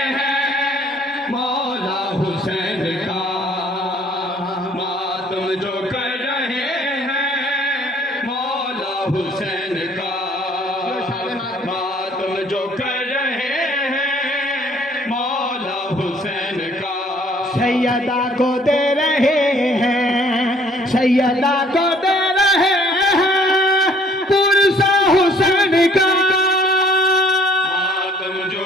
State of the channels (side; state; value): both; normal; correlation 0.59